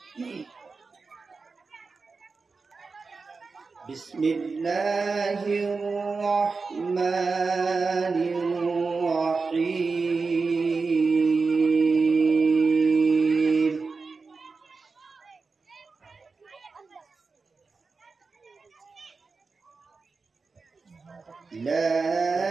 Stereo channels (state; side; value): quieter; left; 4.4 dB